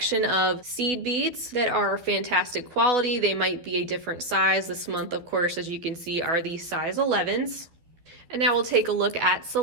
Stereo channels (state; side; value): late; left; 12 ms